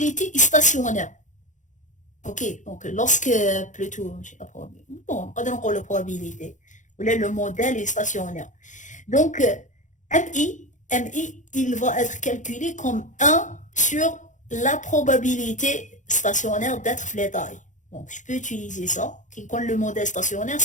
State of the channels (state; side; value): late; right; 0.36 ms